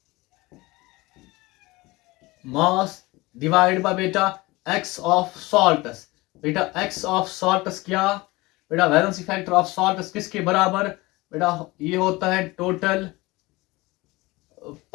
मास डिवाइड बाय बेटा एक्स ऑफ सॉल्ट्स। बेटा एक्स ऑफ सॉल्ट्स क्या, बेटा वैलेंसी फैक्टर ऑफ सॉल्ट्स किसके बराबर, बेटा ये होता है total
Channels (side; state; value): right; quieter; 21.7 dB